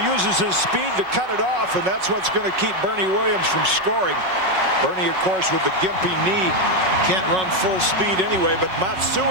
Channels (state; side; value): late; left; 5.4 ms